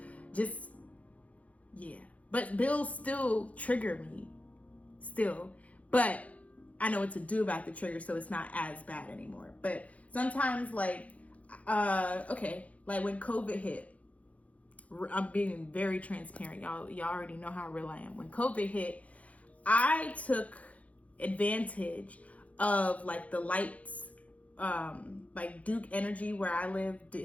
Just, yeah. But bills still trigger me. Still. But I know what to do about the trigger, so it's not as bad anymore. But sometimes, like, like when COVID hit, I'm being very transparent. Y'all already know how real I am. When COVID hit, I took advantage of like the lights, like Duke Energy, where I live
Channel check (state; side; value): late; right; 0.067 ms